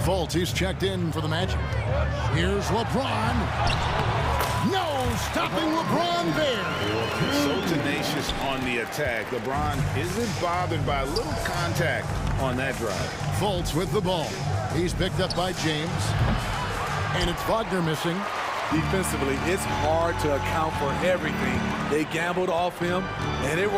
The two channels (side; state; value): both; identical; correlation 1.00